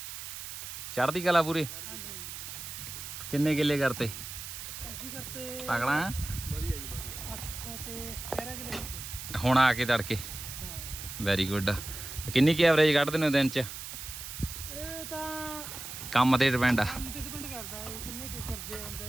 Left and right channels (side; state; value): right; noise; hiss, 9 dB below the sound